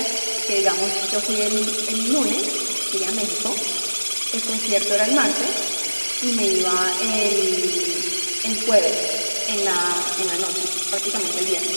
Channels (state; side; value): inverted; both; correlation -1.00